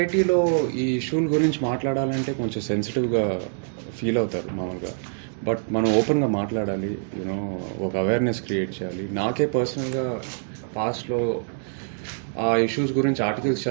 ఈ ఇష్యూల గురించి మాట్లాడాలంటే కొంచెం సెన్సిటివ్గా ఫీల్ అవుతారు మామూలుగా. బట్ మనం ఓపెన్గా మాట్లాడాలి, యూనో ఒక అవేర్నెస్ క్రియేట్ చేయాలి. నాకే పర్సనల్గా పాస్ట్లో ఆ ఇష్యూస్ గురించి ఆర్టికల్స్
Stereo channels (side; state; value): left; silent; digital silence